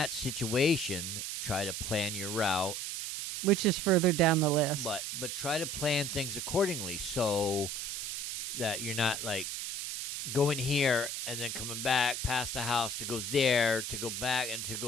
situation, try to plan your route, which is further down the list. but try to plan things accordingly so that you're not like going here and then coming back past the house to go there, to go back and to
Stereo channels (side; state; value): right; noise; hiss, 4 dB below the sound